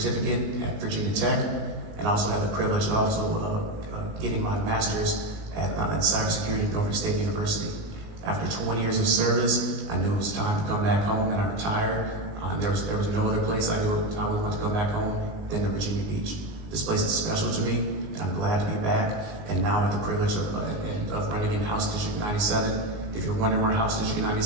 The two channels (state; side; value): late; left; 19 ms